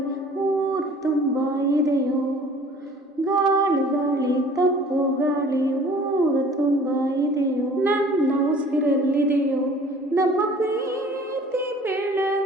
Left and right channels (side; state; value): both; normal; correlation 0.50